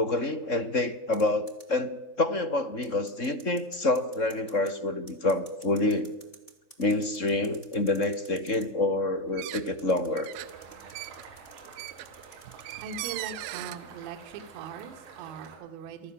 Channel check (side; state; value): right; late; 3.7 ms